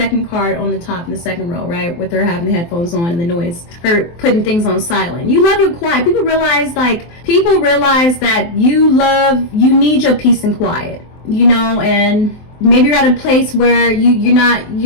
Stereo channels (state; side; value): late; right; 23 ms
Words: card on the top in the second row, right? With her having the headphones on and the noise, her putting things on silent. You love your quiet. People realize that you need your peace and quiet, you know. And maybe you're at a place where you're not